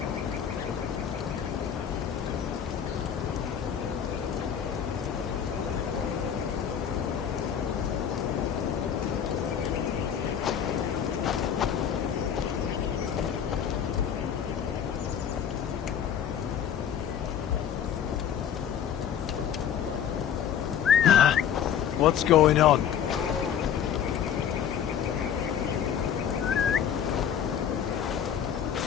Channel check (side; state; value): right; quieter; 8.7 dB